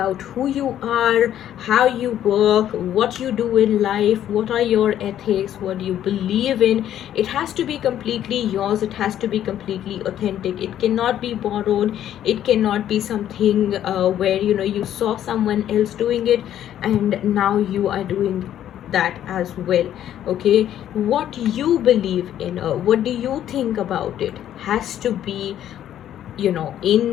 who you are, how you work, what you do in life, what are your ethics, what do you believe in. It has to be completely yours. It has to be completely authentic. It cannot be borrowed. It cannot be something where, you know, you saw someone else doing it and now you are doing that as well. Okay, what you believe in, what do you think about it, has to be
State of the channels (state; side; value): quieter; right; 11.2 dB